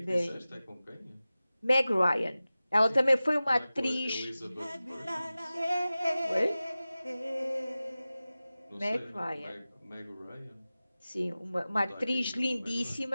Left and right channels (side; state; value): both; inverted; correlation -0.97